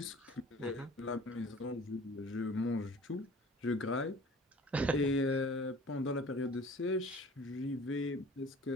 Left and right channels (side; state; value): both; normal; correlation 0.46